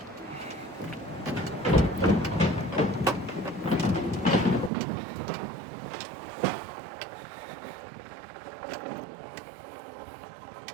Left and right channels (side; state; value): left; drops out; at 4.7 s